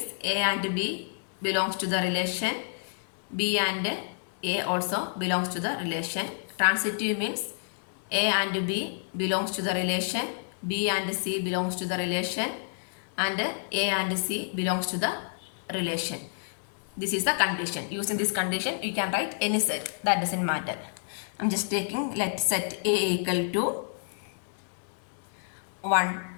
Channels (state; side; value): silent; right; digital silence